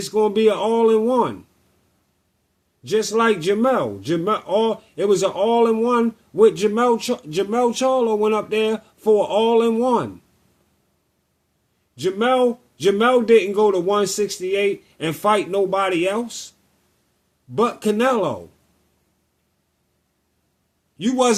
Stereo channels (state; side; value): identical; both; correlation 1.00